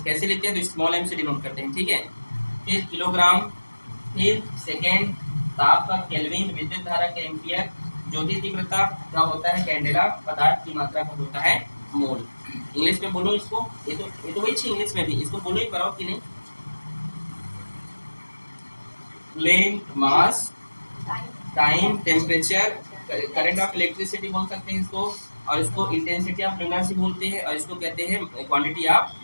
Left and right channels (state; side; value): inverted; both; correlation -1.00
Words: लिखते हैं, तो स्मॉल एम से डिनोट करते हैं, ठीक है। फिर किलोग्राम, फिर सेकेंड, ताप का केल्विन, विद्युत धारा के एम्पियर, ज्योति तीव्रता का होता है कैंडेला, पदार्थ की मात्रा का होता है मोल। इंग्लिश में बोलो इसको, ये तो वही थी इंग्लिश में भी, इसको बोलो ही पाओ कि नहीं, length, mass, time, temperature, current of electricity बोल सकते हैं इसको, और इसको इंटेंसिटी ऑफ लुमिनस बोलते हैं, और इसको कहते हैं क्वांटिटी ऑफ